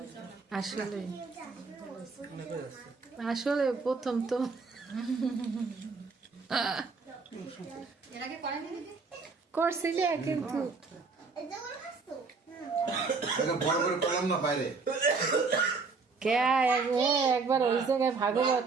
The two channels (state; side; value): quieter; left; 4.5 dB